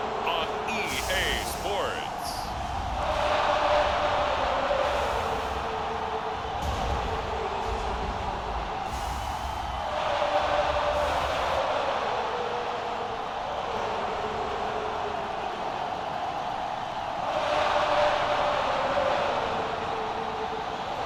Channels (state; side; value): identical; both; correlation 1.00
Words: on EA Sports.